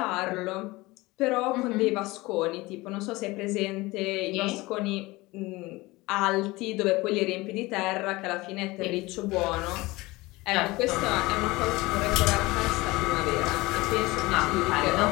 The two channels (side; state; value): right; quieter; 21.4 dB